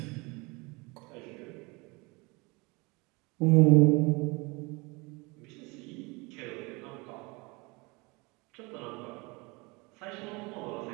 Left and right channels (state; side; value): quieter; left; 26.5 dB